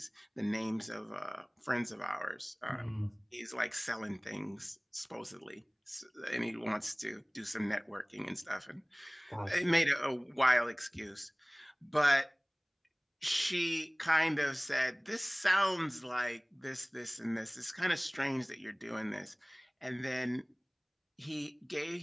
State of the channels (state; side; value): identical; both; correlation 1.00